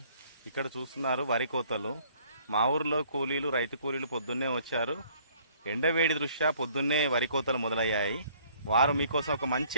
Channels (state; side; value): inverted; both; correlation -0.59